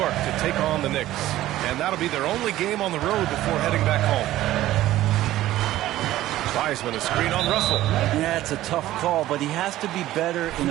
to take on the Knicks. And that'll be their only game on the road before heading back home. Wiseman, a screen on Russell. Yeah, it's a tough call, but he has to be better in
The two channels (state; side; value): quieter; left; 14.8 dB